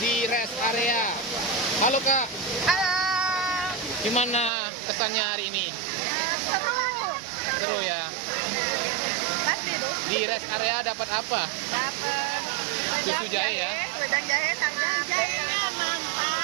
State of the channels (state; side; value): drops out; left; at 4.5 s